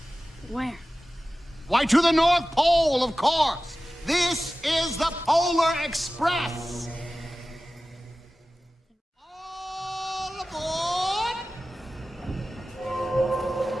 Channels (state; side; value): normal; both; correlation 0.96